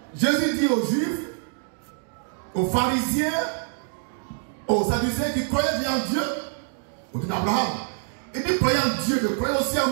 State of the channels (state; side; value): silent; left; digital silence